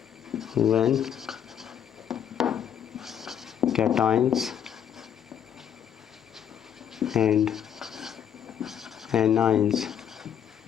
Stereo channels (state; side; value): quieter; right; 9.0 dB